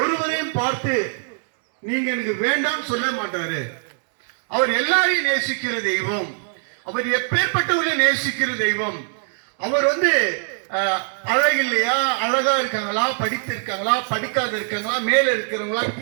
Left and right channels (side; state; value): left; silent; 64 dB below the other